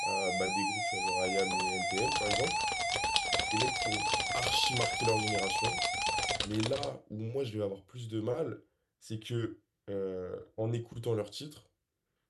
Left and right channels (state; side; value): identical; both; correlation 1.00